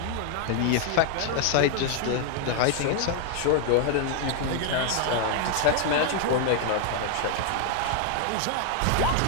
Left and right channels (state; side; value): different; both; correlation 0.00